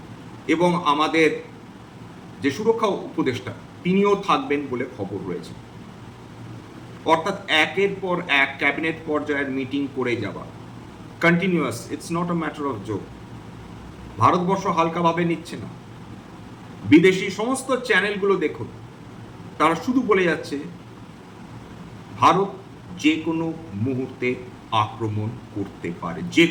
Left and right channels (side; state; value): both; identical; correlation 1.00